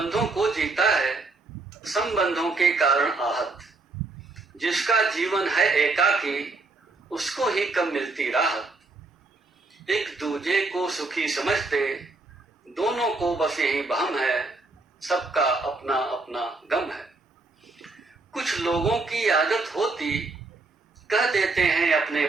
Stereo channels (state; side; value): quieter; left; 3.5 dB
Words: को जीता है संबंधों के कारण आहत, जिसका जीवन है एकाकी उसको ही कम मिलती राहत। एक दूजे को सुखी समझते दोनों को बस यही बहम है, सबका अपना अपना गम है। कुछ लोगों की आदत होती कह देते हैं